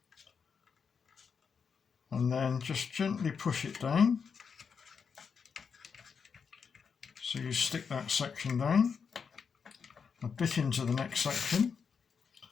and then just gently push it down so you stick that section down a bit into the next section,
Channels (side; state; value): right; quieter; 6.1 dB